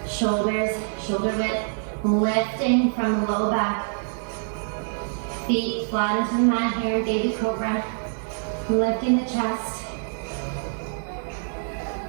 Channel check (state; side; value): silent; left; 62 dB below the other